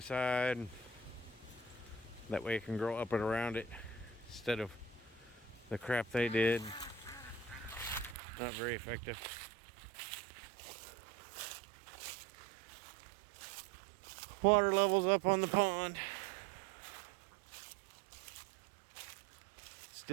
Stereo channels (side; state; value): left; drops out; at 8.2 s